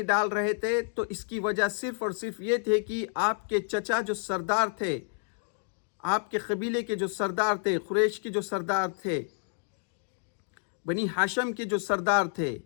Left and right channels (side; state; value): right; silent; 58 dB below the other